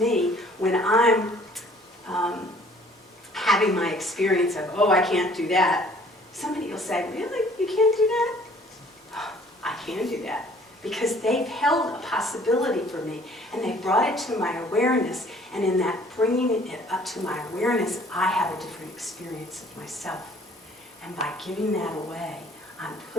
when I'm having my experience of, oh, I can't do that. Somebody will say, really? You can't do that? Oh, I can do that. Because they've held a possibility for me, and they brought it to my awareness, and in that bringing it up to my awareness, I have a different experience of myself. And by giving that away, I'm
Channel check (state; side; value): normal; both; correlation 0.56